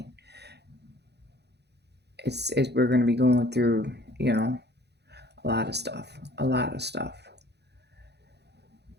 It's we're going to be going through, a lot of stuff, a lot of stuff.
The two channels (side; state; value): left; late; 0.49 ms